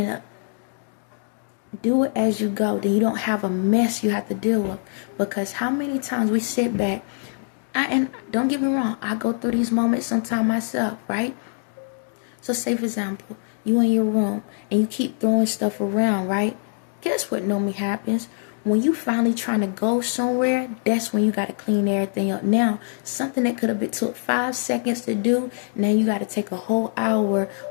up. Do it as you go. Then you don't have a mess you have to deal with. Because how many times we sit back, and don't get me wrong, I go through these moments sometimes myself, right? So say for example, you in your room and you keep throwing stuff around, right? Guess what normally happens? When you finally trying to go somewhere, that's when you got to clean everything up. Now, something that could have been took 5 seconds to do, now you got to take a whole hour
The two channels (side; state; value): right; silent; 63 dB below the other